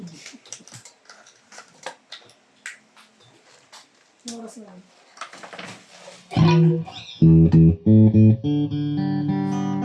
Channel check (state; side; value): identical; both; correlation 1.00